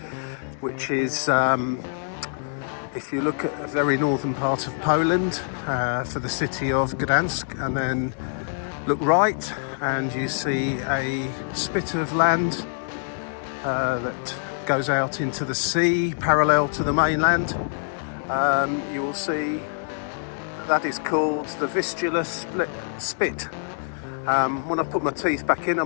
which is, if you look at a very northern part of Poland, for the city of Gdańsk, and then look right and you see a spit of land that goes out into the sea parallel to the mainland. You will see that is called the Vistula Spit. When I put my teeth back in, I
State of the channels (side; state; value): right; silent; 62 dB below the other